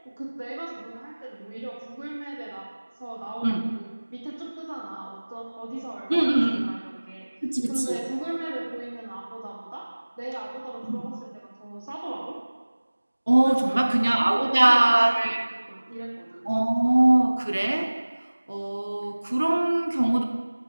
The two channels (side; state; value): both; inverted; correlation -1.00